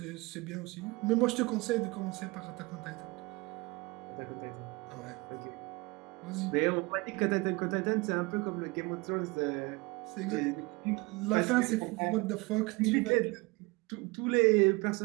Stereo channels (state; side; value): quieter; left; 24.6 dB